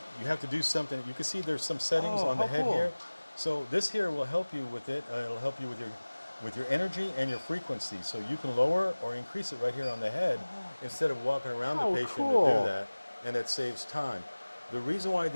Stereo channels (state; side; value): inverted; both; correlation -1.00